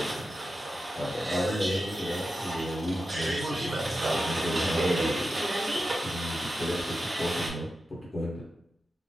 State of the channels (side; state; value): both; normal; correlation 0.91